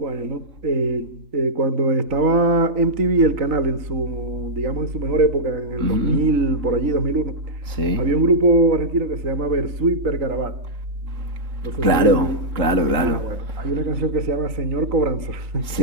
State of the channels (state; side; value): late; left; 3.6 ms